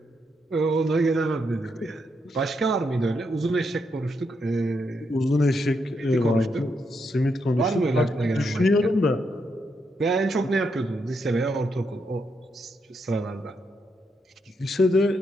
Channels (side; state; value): both; normal; correlation 0.80